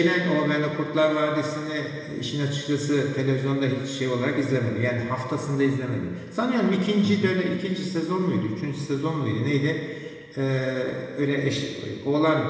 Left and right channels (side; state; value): both; identical; correlation 1.00